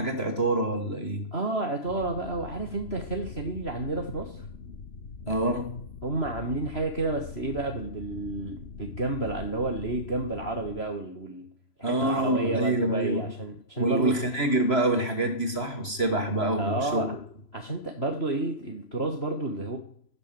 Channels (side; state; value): right; late; 3.0 ms